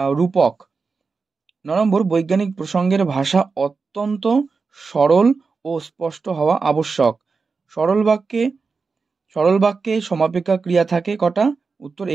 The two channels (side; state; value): left; quieter; 4.6 dB